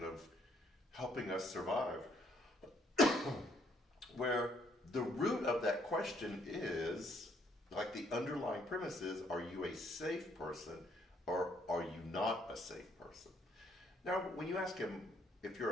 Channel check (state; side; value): normal; both; correlation 0.68